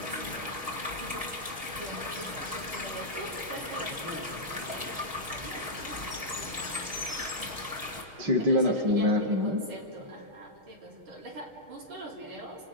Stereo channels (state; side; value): late; left; 6.4 ms